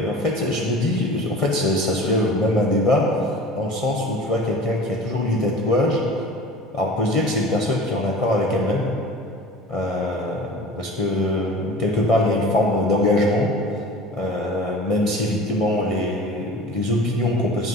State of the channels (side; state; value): both; normal; correlation 0.40